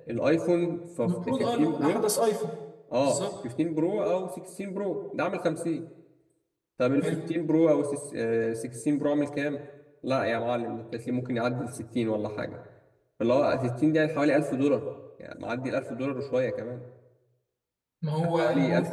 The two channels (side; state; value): both; identical; correlation 1.00